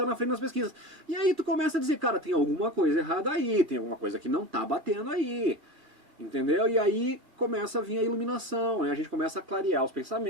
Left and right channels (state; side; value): late; left; 2.3 ms